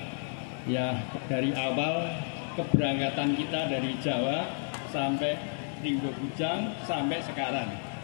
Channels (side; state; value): right; silent; digital silence